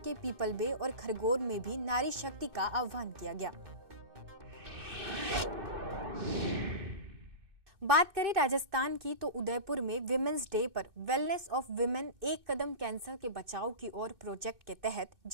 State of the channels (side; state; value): left; late; 2.6 ms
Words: पीपल बे और खरगोन में भी नारी शक्ति का आह्वान किया गया। बात करें राजस्थान की, तो उदयपुर में विमेंस डे पर वेलनेस ऑफ विमेन एक कदम कैंसर के बचाव की ओर प्रोजेक्ट के तहत